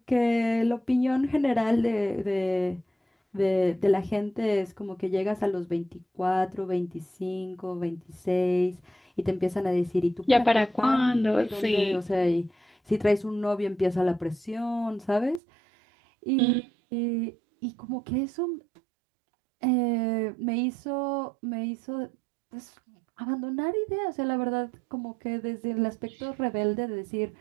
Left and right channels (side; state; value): left; drops out; at 15.4 s